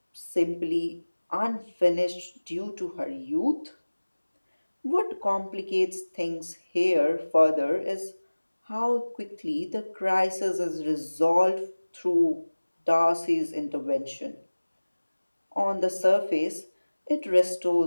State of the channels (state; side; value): inverted; both; correlation -1.00